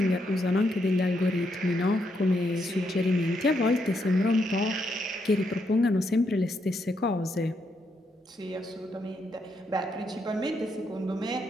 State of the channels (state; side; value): normal; both; correlation 0.78